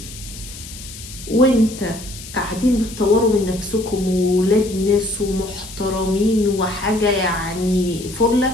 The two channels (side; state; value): left; noise; hiss, 14 dB below the sound